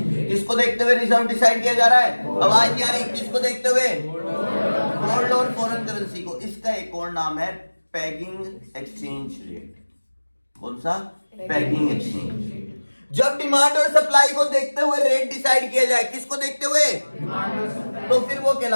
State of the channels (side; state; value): both; inverted; correlation -1.00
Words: देखते हुए रिजर्व डिसाइड किया जा रहा है? आवाज नहीं आ रही, किसको देखते हुए? गोल्ड और फॉरेन करेंसी को। इसका एक और नाम है पेगिंग एक्सचेंज रेट। कौन सा? Pegging exchange. जब डिमांड और सप्लाई को देखते हुए रेट डिसाइड किया जाए, किसको देखते हुए? तो फिर वो